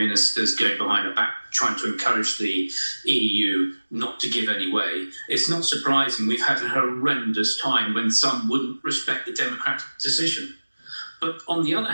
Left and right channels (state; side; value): inverted; both; correlation -1.00